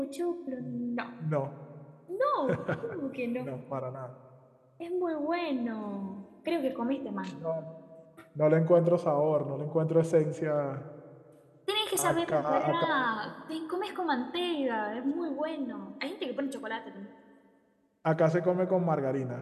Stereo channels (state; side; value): identical; both; correlation 1.00